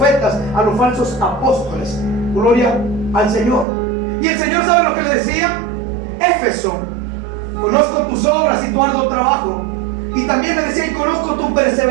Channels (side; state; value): left; drops out; at 3.7 s